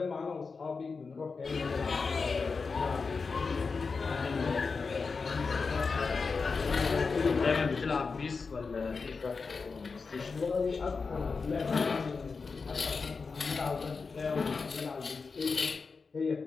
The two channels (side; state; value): right; quieter; 4.7 dB